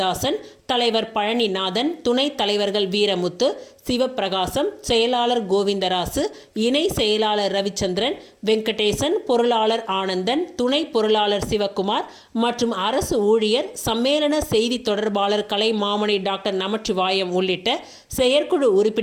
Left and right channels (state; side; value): identical; both; correlation 1.00